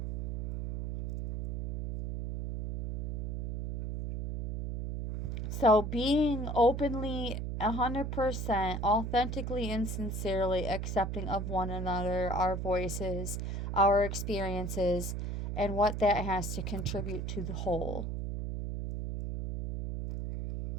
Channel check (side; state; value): right; noise; hum, 3 dB below the sound